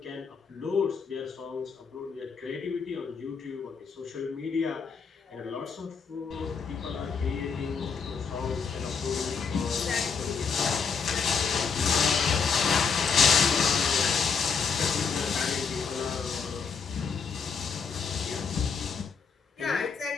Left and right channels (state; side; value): quieter; right; 5.7 dB